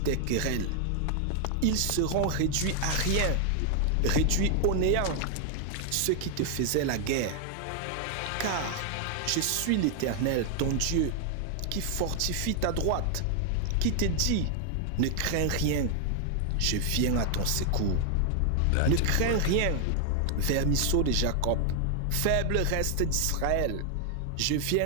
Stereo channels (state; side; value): different; both; correlation 0.00